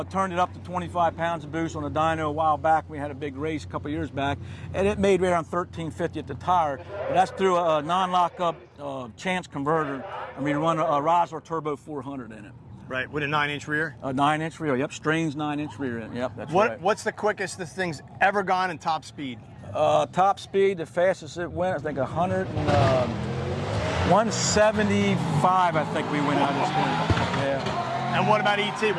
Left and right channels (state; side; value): identical; both; correlation 1.00